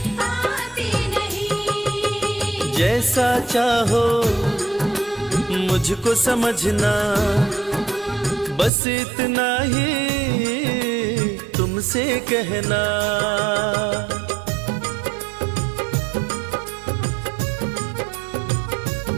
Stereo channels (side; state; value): left; drops out; at 8.7 s